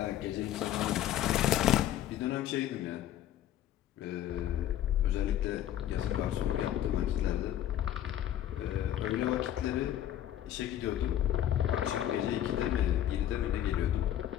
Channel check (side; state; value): right; quieter; 11.7 dB